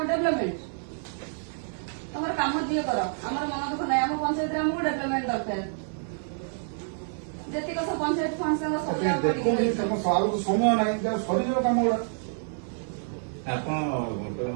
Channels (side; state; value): left; silent; digital silence